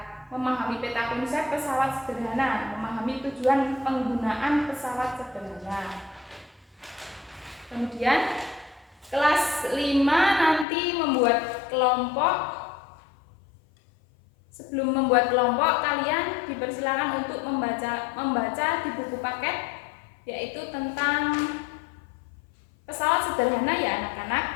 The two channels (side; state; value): right; drops out; at 10.7 s